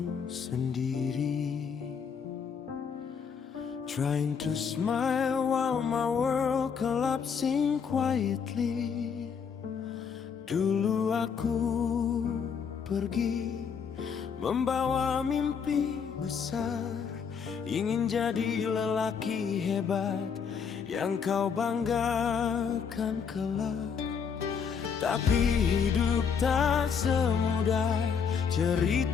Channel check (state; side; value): quieter; right; 6.6 dB